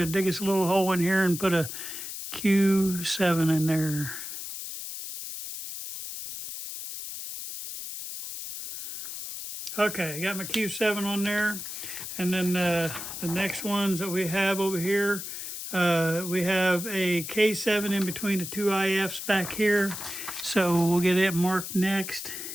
dig us a little hole in here and put a Q7 in there. Okay, I got my Q7 on there. And then the next ones that we have over here, we have a K7 in between the two IFs back here. So we'll get it marked next.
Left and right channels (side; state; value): left; noise; hiss, 8 dB below the sound